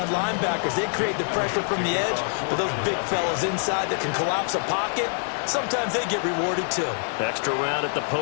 linebackers. They create the pressure from the edge, but those big fellas inside that can collapse a pocket, sometimes they get rewarded too. Extra round at the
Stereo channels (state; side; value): silent; right; 56 dB below the other